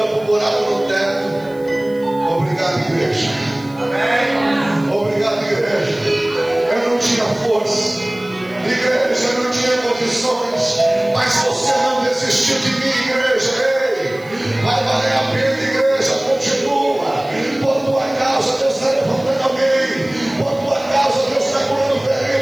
para o buraco no teto. Obrigado, igreja. Obrigado, igreja. Eu não tinha força, igreja, eu não tinha condições, mas você não desistiu de mim, igreja. Ei, vai valer a pena, igreja. Continua. Por tua causa Deus está levantando alguém. Por tua causa Deus está curando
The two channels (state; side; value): noise; right; hiss, 27 dB below the sound